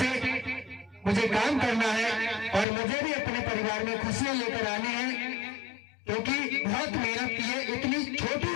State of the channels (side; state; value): right; drops out; at 2.7 s